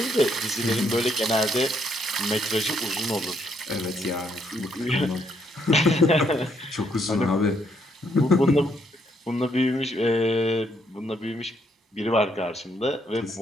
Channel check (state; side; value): normal; both; correlation 0.73